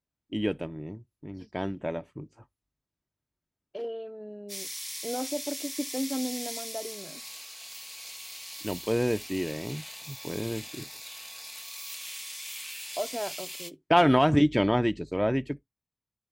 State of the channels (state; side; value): identical; both; correlation 1.00